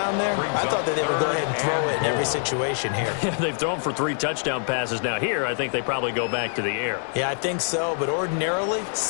there? I thought that they would go ahead and throw it in every situation here. They've thrown for 3 touchdown passes now. Here, I think they probably go back to the air. Yeah, I think so. But ordinarily,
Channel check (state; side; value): silent; right; 62 dB below the other